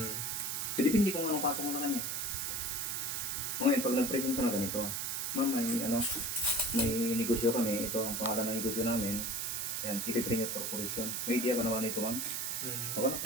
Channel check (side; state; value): right; noise; hiss, 1 dB below the sound